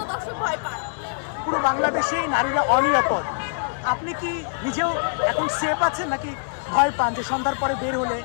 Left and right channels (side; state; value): right; silent; 63 dB below the other